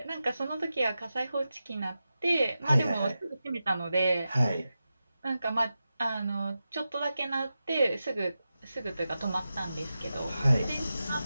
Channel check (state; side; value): inverted; both; correlation -0.92